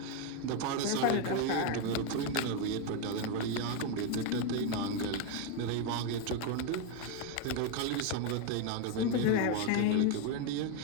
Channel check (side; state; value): both; different; correlation 0.02